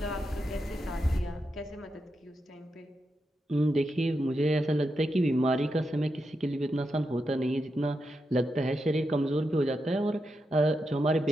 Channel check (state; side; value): normal; both; correlation 0.86